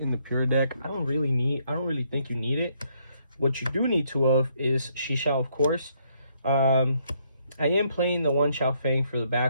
the pure deck. I don't really think you need it. What you do need 2 of is Shisha, of course. I am playing the 1 Xiao Fang for the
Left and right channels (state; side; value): inverted; both; correlation -0.71